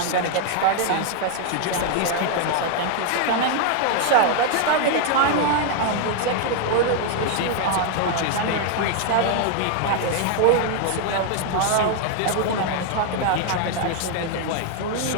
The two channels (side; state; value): both; different; correlation 0.00